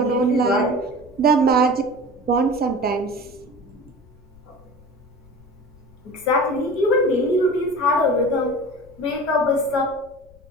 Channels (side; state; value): left; noise; rumble, 26 dB below the sound